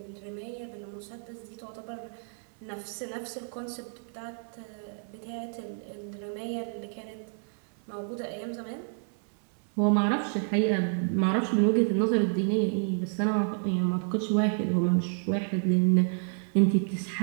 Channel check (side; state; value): left; silent; 58 dB below the other